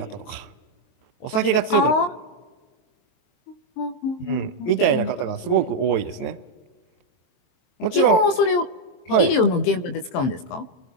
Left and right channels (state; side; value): late; right; 23 ms